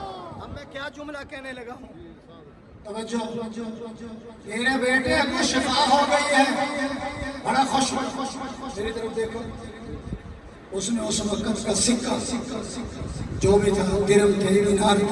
اب میں کیا جملہ کہنے لگا ہوں؟ توجہ، تیرے بیٹے کو شفا ہو گئی ہے، بڑا خوش، میری طرف دیکھو۔ اس نے اس وقت کا سکہ جو بھی تھا، درم تھے، دینار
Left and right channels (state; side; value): identical; both; correlation 1.00